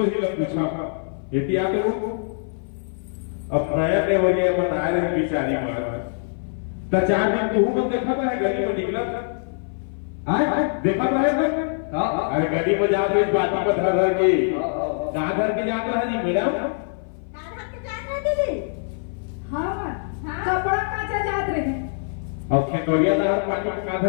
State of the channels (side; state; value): right; silent; 58 dB below the other